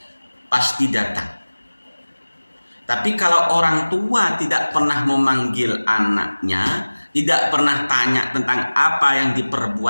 pasti datang. Tapi kalau orang tua tidak pernah memanggil anaknya, tidak pernah tanya tentang apa yang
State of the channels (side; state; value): both; inverted; correlation -1.00